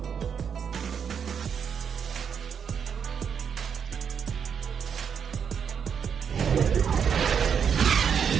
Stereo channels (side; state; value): left; quieter; 7.3 dB